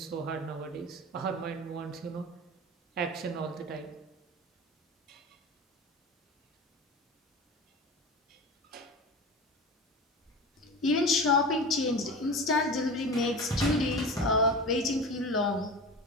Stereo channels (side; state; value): both; normal; correlation 0.30